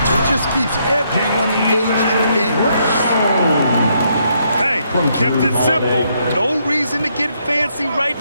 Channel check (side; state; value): both; inverted; correlation -0.74